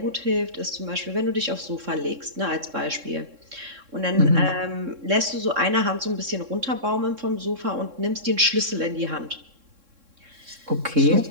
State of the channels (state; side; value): late; left; 3.7 ms